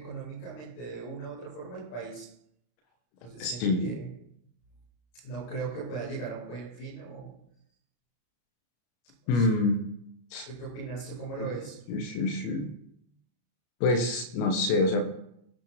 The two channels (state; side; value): late; right; 33 ms